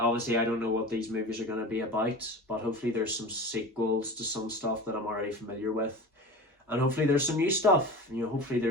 I don't know what these movies are going to be about, but hopefully there's some sequels to some stuff that I'm already familiar with. And hopefully there's some new stuff. You know, hopefully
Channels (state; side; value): normal; both; correlation 0.33